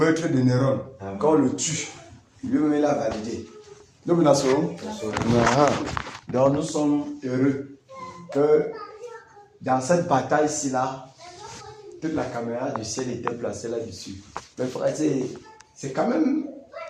de Néron. Quand on le tue, lui-même il a validé. Donc nous sommes heureux que dans cette bataille-ci là, toute la caméra du ciel était placée là-dessus. Mais frère, c'est quand même...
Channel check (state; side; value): identical; both; correlation 1.00